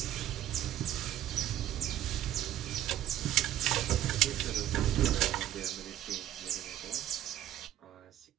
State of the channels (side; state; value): left; quieter; 12.5 dB